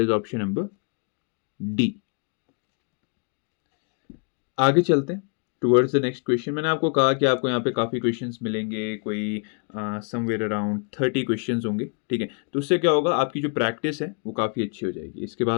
is option number D. आगे चलते हैं टुवर्ड्स द नेक्स्ट क्वेश्चन। मैंने आपको कहा कि आपको यहाँ पे काफ़ी क्वेश्चंस मिलेंगे, कोई समवेयर अराउंड 30 क्वेश्चंस होंगे। ठीक है, तो उससे क्या होगा, आपकी जो प्रैक्टिस है वो काफ़ी अच्छी हो जाएगी। इसके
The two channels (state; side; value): quieter; right; 40.0 dB